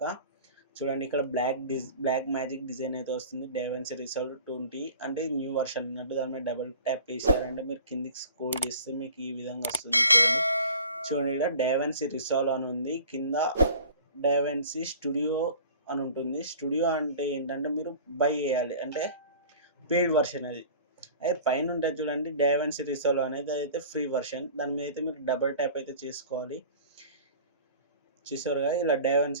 చూడండి, ఇక్కడ బ్లాక్ మ్యాజిక్ డిజైన్ అయితే వస్తుంది. డైవెన్సీ రీసాల్వ్ 20 అంటే న్యూ వర్షన్ అన్నట్టు. దాని మీద డబుల్ ట్యాప్ చేశారంటే మీరు కిందికి స్క్రోల్ చేస్తే మీకు ఈ విధంగా వస్తుంది. చూడండి ఇక్కడ డైవెన్సీ రీసాల్వ్ అని ఉంది, కింద డైవెన్సీ స్టూడియో అని ఉంటుంది. స్టూడియో అంటే ఏంటంటే మీరు బై చేయాలి, అంటే పెయిడ్ వర్షన్ అది. అయితే పైన ఉంటుంది చూడండి డైవెన్సీ రీసాల్వ్ అనేది, అయితే ఫ్రీ వర్షన్. దాని మీద అయితే మీరు డబుల్ ట్యాప్ అయితే చేసుకోవాలి. చూసారుగా ఇలా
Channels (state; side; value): inverted; both; correlation -0.44